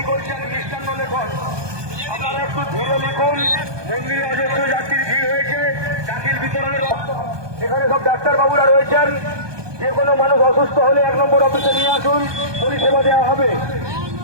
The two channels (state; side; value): late; left; 1.2 ms